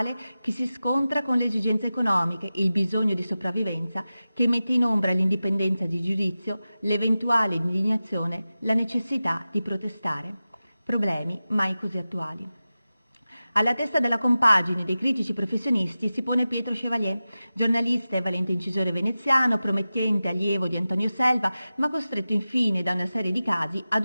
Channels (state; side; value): inverted; both; correlation -0.94